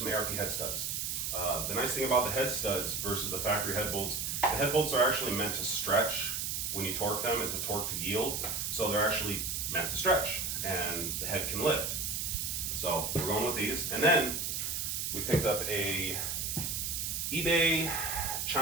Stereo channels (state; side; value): noise; right; hiss, 1 dB below the sound